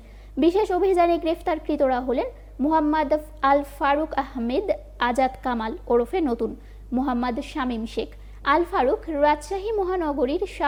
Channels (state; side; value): identical; both; correlation 1.00